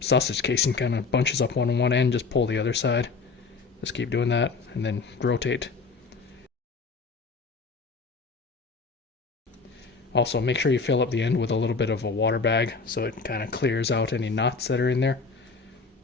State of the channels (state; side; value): quieter; right; 4.5 dB